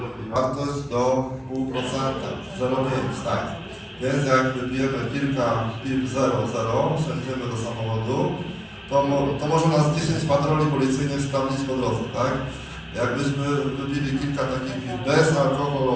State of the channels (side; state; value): both; identical; correlation 1.00